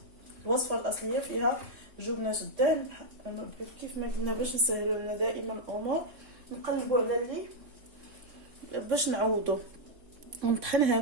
الوصفه الاصليه فيها جبنه الدهن. كيف ما قلنا باش نسهلوا لنا دائما الامور نقلبوا على اللي باش نعوضوا ونطحن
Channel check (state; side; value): late; left; 3.6 ms